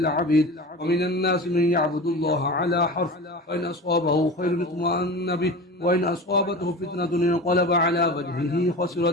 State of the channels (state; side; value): normal; both; correlation 0.32